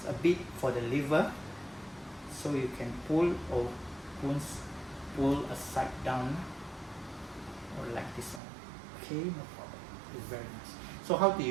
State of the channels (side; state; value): left; drops out; at 8.4 s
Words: a bit for the lever, so you can pull or pull a side down, or like this one. Okay, no problem, it's very nice. So how do